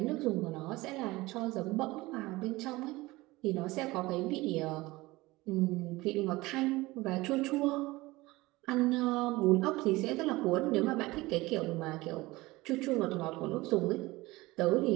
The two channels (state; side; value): quieter; left; 20.4 dB